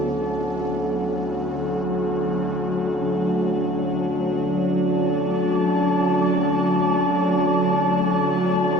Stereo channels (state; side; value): normal; both; correlation 0.53